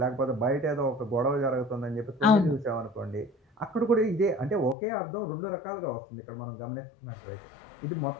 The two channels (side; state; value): right; drops out; at 4.8 s